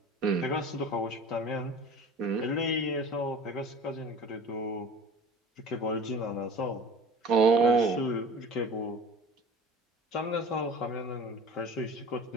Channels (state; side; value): normal; both; correlation 0.40